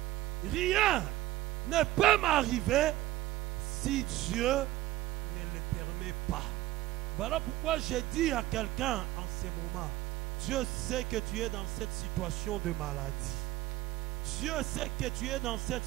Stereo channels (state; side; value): quieter; left; 16.1 dB